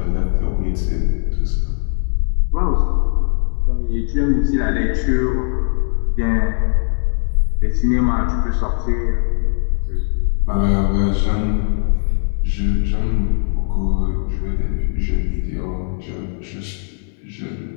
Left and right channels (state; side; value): silent; right; 62 dB below the other